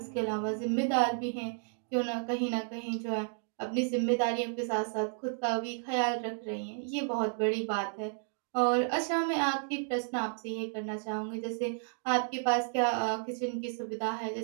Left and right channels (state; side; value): silent; left; 56 dB below the other